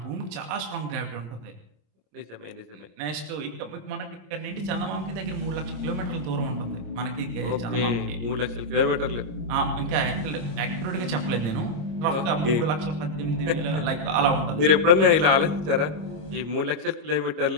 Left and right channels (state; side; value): late; left; 25 ms